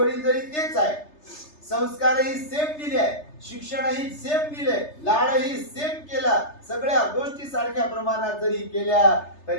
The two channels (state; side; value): late; right; 3.3 ms